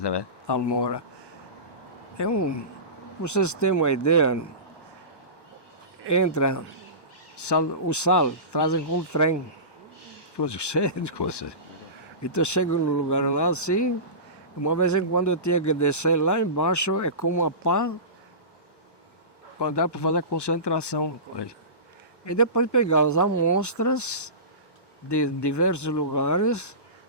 Salmoura. Pra vocês terem uma ideia, entra o sal, trazem com trem, coisa cheia de coisa. Então chego no lugar lá assim, uma vez em quando eu tinha que descer lá embaixo, é como uma pá, para dar para fazer concentração. E depois pegar as amostras de diversos lugares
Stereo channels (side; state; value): right; late; 1.2 ms